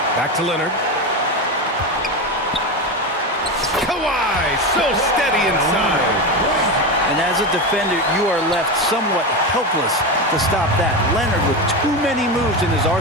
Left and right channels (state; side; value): normal; both; correlation 0.18